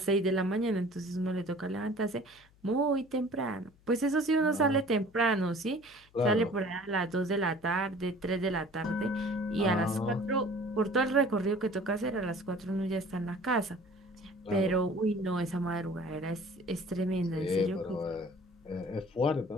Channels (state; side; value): noise; left; hum, 30 dB below the sound